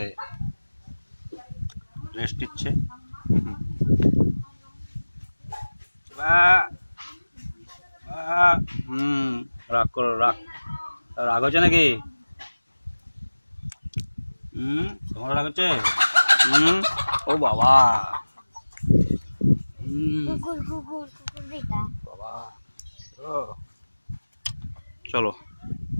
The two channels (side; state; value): both; inverted; correlation -1.00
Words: রেস্ট নিচ্ছে। রাগ করো, রাগ রাগ হচ্ছে নাকি? তোমার রাগ হচ্ছে? ও বাবা, বাবা চলো